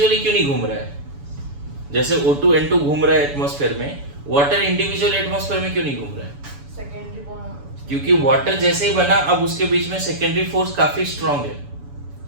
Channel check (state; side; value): late; left; 7.0 ms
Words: क्यों नहीं घूम रहा है, जैसे O2 N2 घूम रहा है एटमॉस्फेयर में, वाटर इंडिविजुअल एटमॉस्फेयर में क्यों नहीं घूम रहा है, क्योंकि वाटर जैसे ही बना अब उसके बीच में सेकेंडरी फोर्स काफी स्ट्रॉन्ग है,